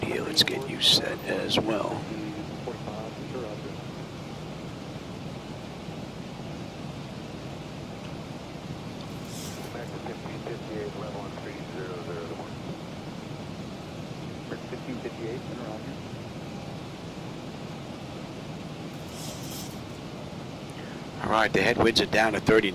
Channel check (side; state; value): both; identical; correlation 1.00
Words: here. Let's get you set as well. American 1558, level on 300 to 1. 1558, and around here. All right, the headwinds are down to 30